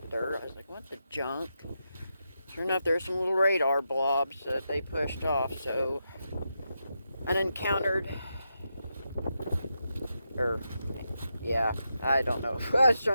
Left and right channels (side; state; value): both; inverted; correlation -0.86